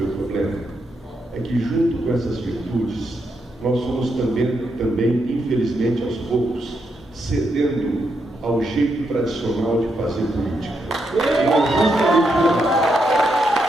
o problema? É que junto com essas virtudes, nós fomos também, infelizmente, aos poucos, cedendo ao jeito tradicional de fazer política. E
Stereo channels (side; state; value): both; normal; correlation 0.81